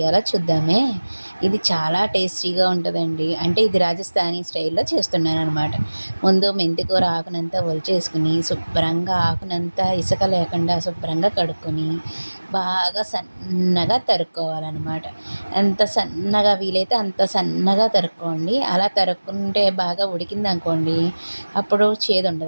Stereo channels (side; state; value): both; inverted; correlation -1.00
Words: చూద్దామే. ఇది చాలా టేస్టీగా ఉంటుందండి. అంటే ఇది రాజస్థానీ స్టైల్లో చేస్తున్నాననమాట. ముందు మెంతికూర ఆకునంతా ఒలిచేసుకుని శుభ్రంగా ఆకునంతా ఇసుక లేకుండా శుభ్రంగా కడుక్కొని బాగా సన్నగా తరుక్కోవాలన్నమాట. ఎంత సన్నగా వీలైతే అంత సన్నగా తరుక్కోండి. అలా తరుక్కుంటే బాగా ఉడికిందనుకోండి అప్పుడు చేదు